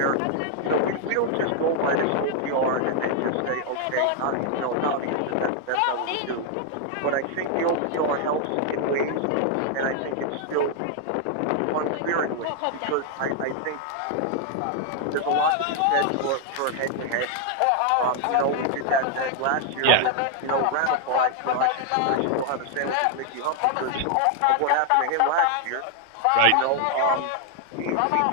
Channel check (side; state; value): both; different; correlation 0.00